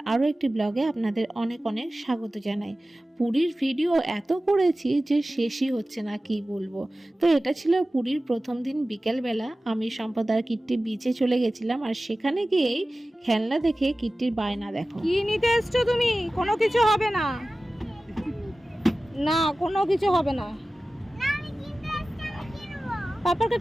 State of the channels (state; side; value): normal; both; correlation 0.96